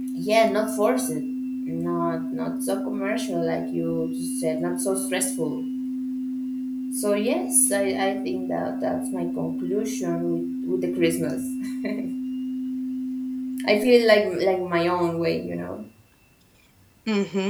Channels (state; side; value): identical; both; correlation 1.00